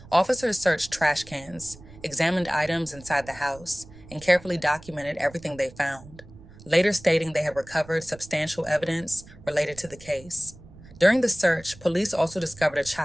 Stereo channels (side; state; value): right; noise; rumble, 20 dB below the sound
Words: Officers searched trash cans, examined items inside the house, and carefully documented everything they found, later stating they had recovered substantial evidence related to the case. During the search, police also discovered a